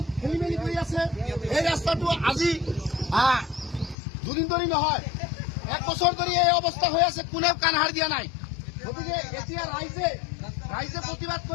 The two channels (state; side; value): drops out; right; at 4.0 s